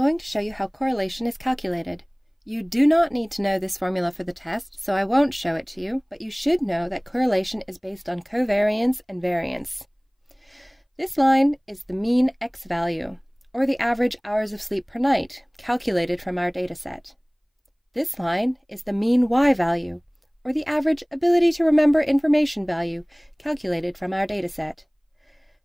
to show you how correlation is calculated. You do not need to know this formula for the test, so I won't show it to you, but you should know that correlation is based on covariance and variance. This line is the mean X value, or the average hours of sleep per night, calculated from our dataset. This line is the mean Y value, or the average ability to remember information value, calculated from our dataset.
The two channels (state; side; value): identical; both; correlation 1.00